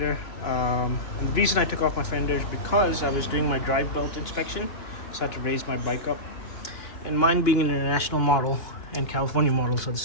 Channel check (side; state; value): right; late; 2.9 ms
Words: And the reason I took off my fender is because I was doing my drive belt inspection, so I had to raise my bike up. And mine being an international model, and California models are the